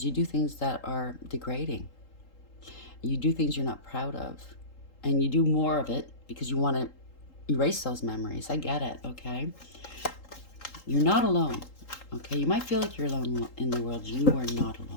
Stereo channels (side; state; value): right; late; 3.8 ms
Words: you do things that are degrading. You do things you're not proud of. And you do more of it because you want to erase those memories. I get it, okay? You're not alone, okay? You might feel like you're alone in the world. You are not